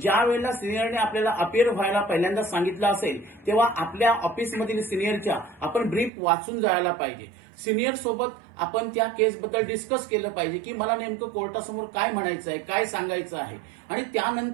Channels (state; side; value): drops out; left; at 6.1 s